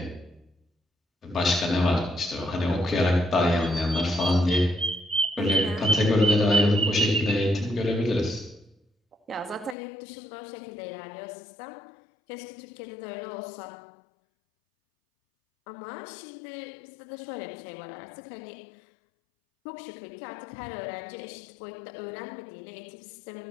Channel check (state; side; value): drops out; right; at 9.8 s